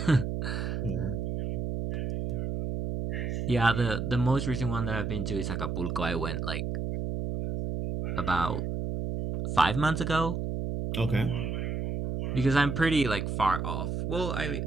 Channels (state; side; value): noise; right; hum, 2 dB below the sound